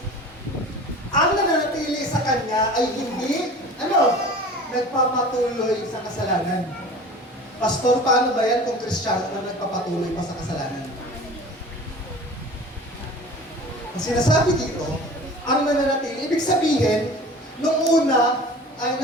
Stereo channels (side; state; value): both; normal; correlation 0.40